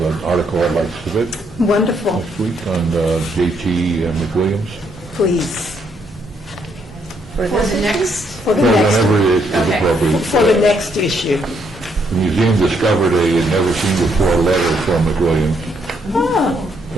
an article I'd like to submit Wonderful. next week on J.T. McWilliams. Please. For For this the issue? next, For the Well, next, whenever it is Okay. appropriate. for the next issue. The museum discovered a never seen before letter from McWilliams. Oh,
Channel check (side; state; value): both; normal; correlation 0.73